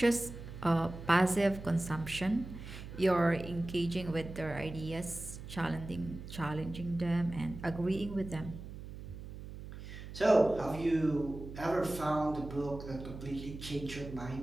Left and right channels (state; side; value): noise; right; hum, 11 dB below the sound